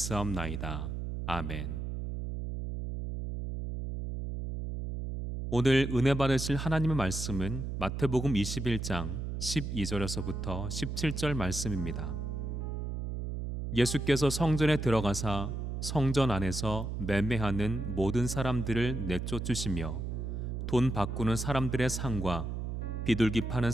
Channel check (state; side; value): noise; right; hum, 4 dB below the sound